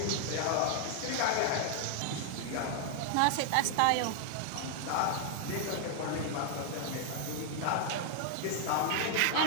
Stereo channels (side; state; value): both; different; correlation 0.00